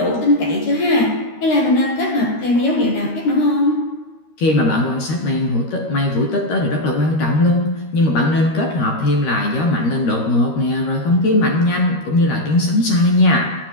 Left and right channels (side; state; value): right; late; 13 ms